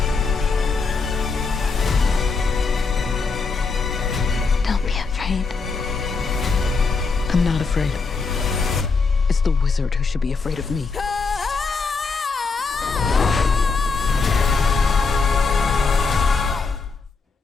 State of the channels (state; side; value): quieter; right; 4.6 dB